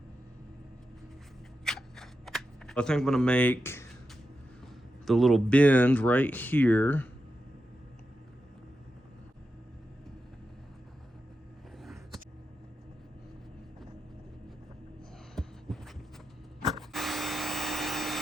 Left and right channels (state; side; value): normal; both; correlation 0.89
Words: I think I'm gonna make the little bend right here.